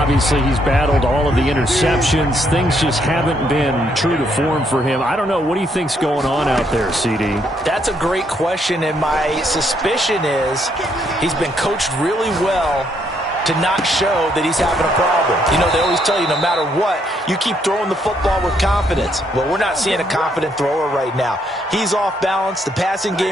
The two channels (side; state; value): both; normal; correlation 0.72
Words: he's battled all of the interceptions. Things just haven't been true to form for him. I don't know. What do you think's going on out there, CD? That's a great question, and my suspicion is he's been coached really well to not show that he's having a problem. You know, they always tell you no matter what, you keep throwing the football with confidence. Well, we're not seeing a confident thrower right now. He's off balance, the passing